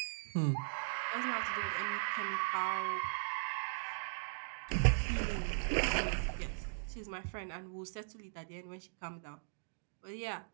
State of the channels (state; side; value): silent; left; digital silence